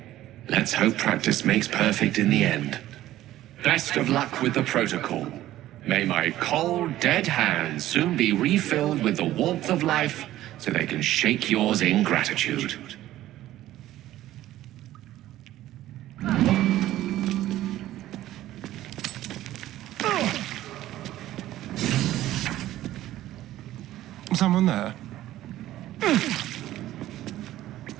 Let's hope practice makes perfect in the end. Best of luck with the protocol. May my cold, dead hands soon be refilled with the warmth of life so they can shake yours in gratitude. Someone there?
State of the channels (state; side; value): quieter; left; 14.3 dB